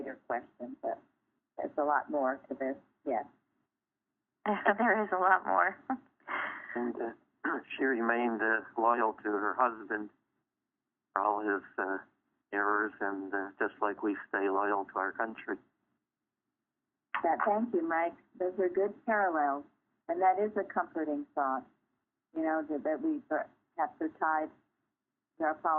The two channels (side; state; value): both; identical; correlation 1.00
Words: question, but there's a lot more to this. Yes, there is a lot more. And she remained loyal to her husband for all his errors, and just like we stay loyal to our country. Thank you, Mike. Those are good parallels, and that is a comforting thought. That we have to tie our